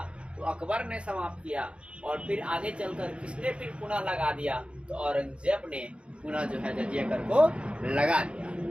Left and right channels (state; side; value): late; left; 0.058 ms